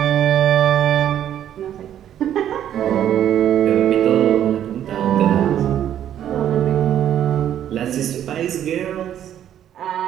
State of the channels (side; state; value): left; quieter; 10.7 dB